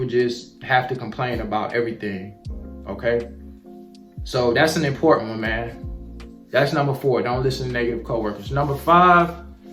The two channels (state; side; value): identical; both; correlation 1.00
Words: just have to complain about everything, okay? So that's an important one, man. That's number 4. Don't listen to negative coworkers. Number 5,